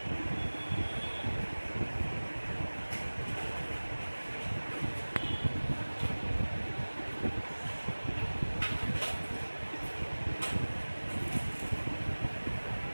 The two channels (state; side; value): inverted; both; correlation -1.00